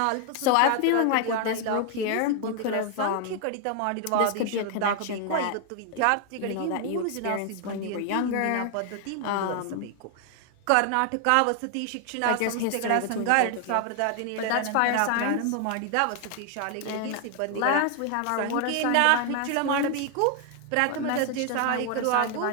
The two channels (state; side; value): different; both; correlation 0.00